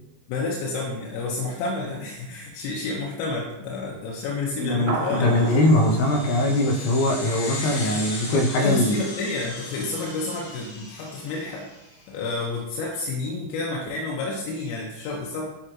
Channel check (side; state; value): right; late; 19 ms